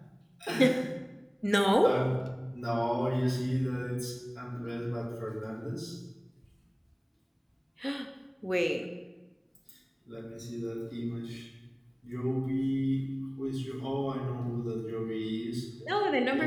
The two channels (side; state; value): both; identical; correlation 1.00